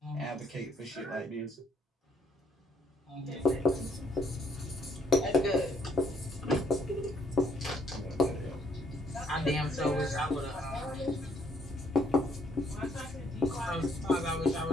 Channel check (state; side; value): normal; both; correlation 0.68